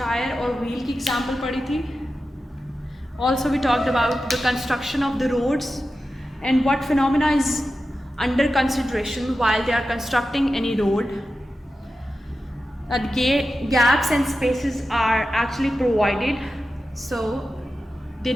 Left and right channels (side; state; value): both; normal; correlation 0.92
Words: और wheel की example पढ़ी थी. Also, we talked about the construction of the roads and what phenomena is under consideration while they are constructing any road. That gaps and spaces are actually provided so they